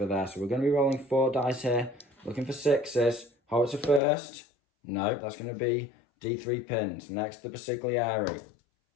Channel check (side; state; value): right; drops out; at 4.0 s